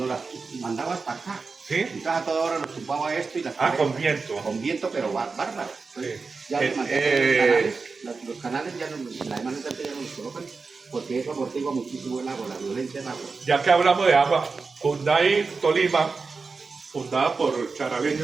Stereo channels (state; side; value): quieter; left; 4.5 dB